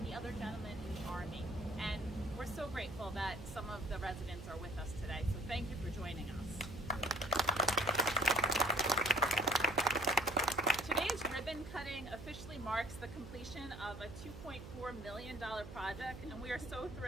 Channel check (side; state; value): right; noise; hum, 12 dB below the sound